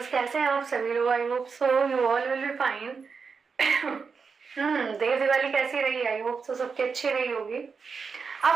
कैसे हैं आप सभी लोग? I hope so you all will be fine. Dev Diwali कैसी रही? आई होप सो सबकी अच्छी रही होगी।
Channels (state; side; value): quieter; left; 5.4 dB